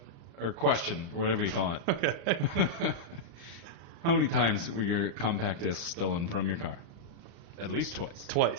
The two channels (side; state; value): left; late; 35 ms